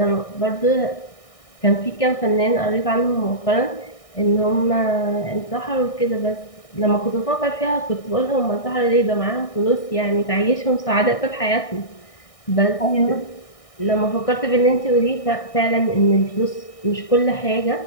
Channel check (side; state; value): right; late; 1.6 ms